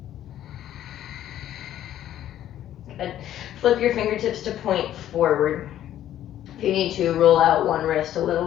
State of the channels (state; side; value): quieter; right; 11.9 dB